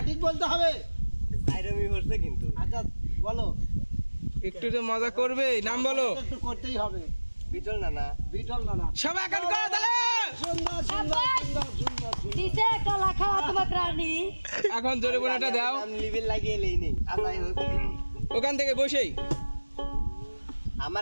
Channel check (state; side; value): inverted; both; correlation -1.00